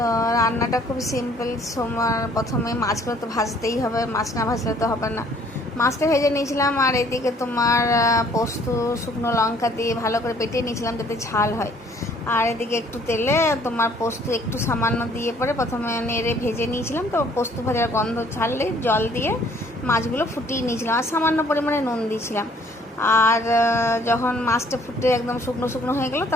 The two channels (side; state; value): both; normal; correlation 0.60